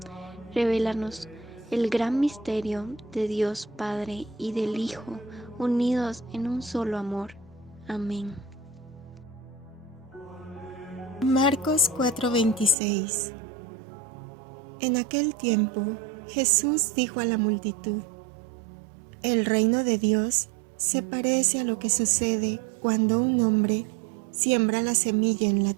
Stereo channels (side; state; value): left; drops out; at 12.8 s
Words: revélanos el gran misterio de Dios Padre y del Hijo, unidos en un solo amor. Amén. Marcos 4:26. En aquel tiempo, Jesús dijo a la multitud: El reino de Dios se parece a lo que sucede cuando un hombre siembra la semilla en la